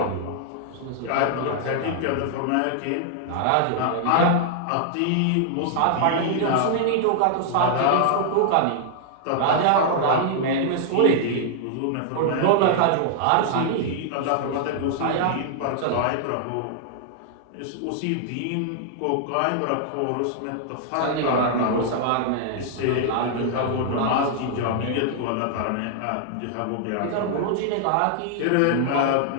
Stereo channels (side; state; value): both; different; correlation 0.00